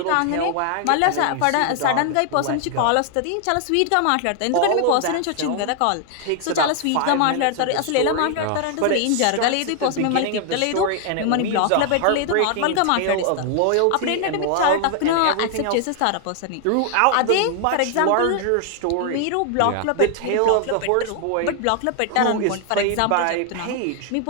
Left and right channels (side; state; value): both; different; correlation 0.00